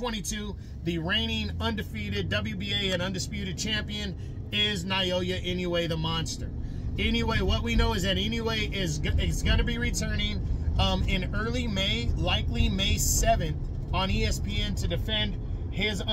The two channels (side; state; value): both; identical; correlation 1.00